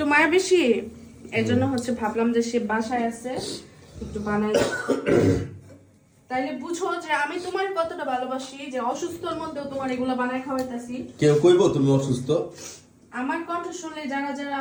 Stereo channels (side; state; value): both; identical; correlation 1.00